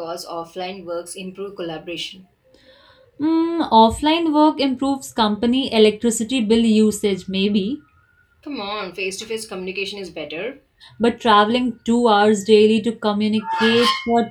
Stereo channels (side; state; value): both; identical; correlation 1.00